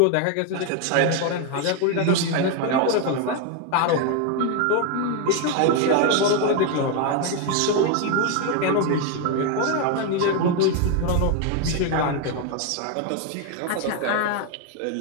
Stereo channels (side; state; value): both; different; correlation 0.01